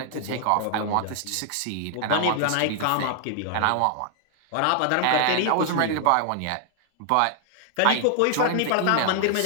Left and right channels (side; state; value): both; different; correlation 0.00